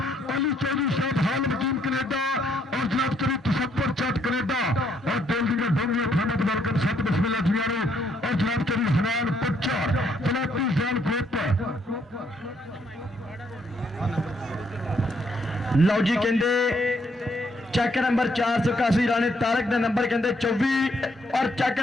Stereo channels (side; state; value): both; normal; correlation 0.71